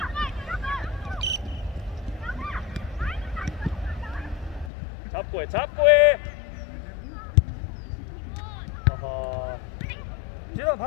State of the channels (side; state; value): right; drops out; at 4.7 s